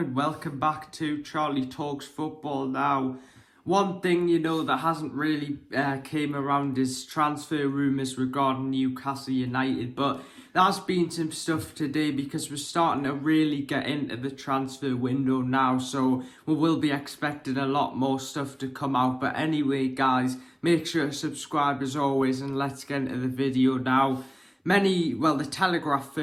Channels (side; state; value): both; identical; correlation 1.00